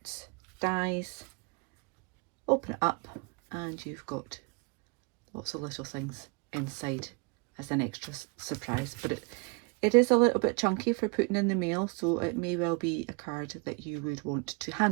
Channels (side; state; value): left; quieter; 31.4 dB